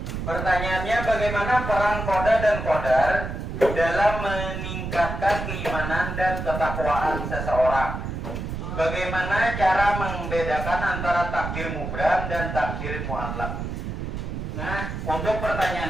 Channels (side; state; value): right; noise; rumble, 5 dB below the sound